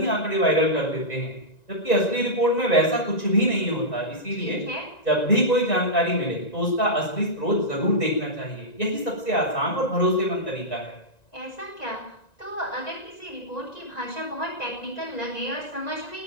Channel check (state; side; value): late; right; 1.9 ms